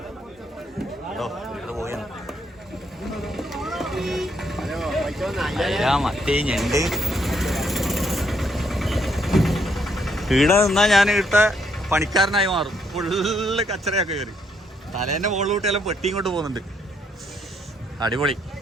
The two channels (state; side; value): normal; both; correlation 0.73